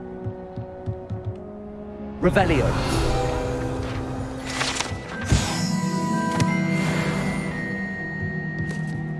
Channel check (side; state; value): both; identical; correlation 1.00